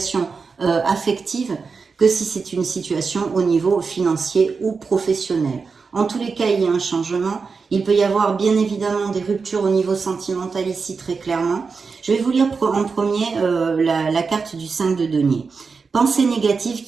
affective que si c'est une situation au niveau financier ou professionnel. En tous les cas, il y a un changement. Il peut y avoir bien évidemment des ruptures au niveau sentimental ici très clairement. Je vais vous lire en premier la carte du 5 de denier. Pensée négative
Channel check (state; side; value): quieter; left; 4.9 dB